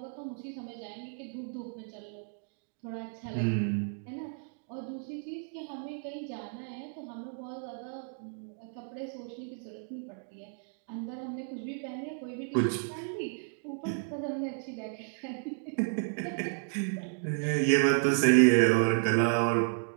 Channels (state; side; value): silent; left; 56 dB below the other